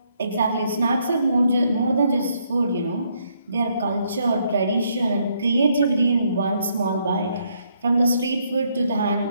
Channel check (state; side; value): inverted; both; correlation -0.73